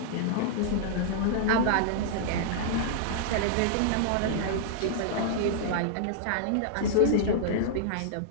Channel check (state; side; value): different; both; correlation -0.02